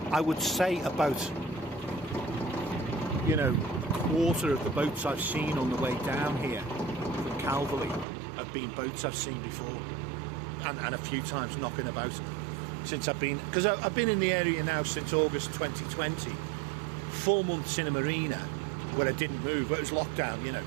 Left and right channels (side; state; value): left; drops out; at 8.1 s